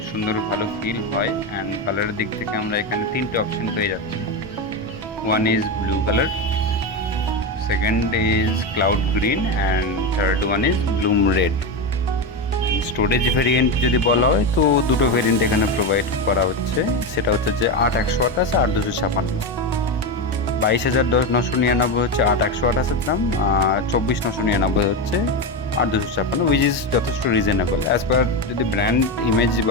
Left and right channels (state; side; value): normal; both; correlation 0.15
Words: সুন্দর ভালো ফিল হয়। অ্যান্ড কালারের দিক থেকে আমরা এখানে তিনটে অপশন পেয়ে যাচ্ছি। One is blue colour, second is cloud green, and third one is Bloom red. Storage variant যদি বলা হয় তো দুটো ভেরিয়েন্ট এখানে প্রোভাইড করা হচ্ছে, সেটা হচ্ছে যে 8/128 আর 256। 22,999 হচ্ছে 8/128 দাম, আর 24,999 হচ্ছে 8/256, উইচ ইজ যথেষ্ট রিজনেবল অ্যাজ পার যদি ব্র্যান্ড ইমেজ